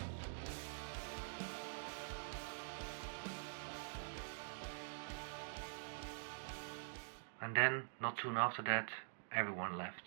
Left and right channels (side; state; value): left; silent; digital silence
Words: And then, not soon after that, everyone left,